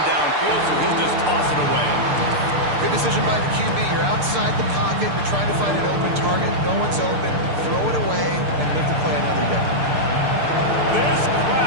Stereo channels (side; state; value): left; late; 6.7 ms